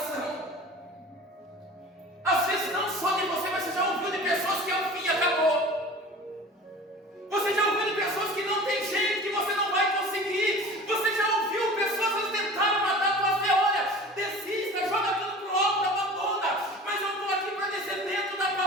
Às vezes não só de você, mas você já ouviu de pessoas que o fim acabou. Você já ouviu de pessoas que não tem jeito, que você não vai conseguir. Você já ouviu pessoas que tentaram matar a tua fé. Olha, desista, joga tudo pro alto, abandona. Mas eu estou aqui para dizer dentro da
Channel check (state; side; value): normal; both; correlation 0.40